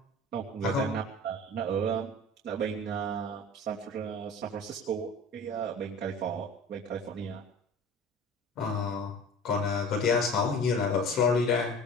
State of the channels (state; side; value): normal; both; correlation 0.39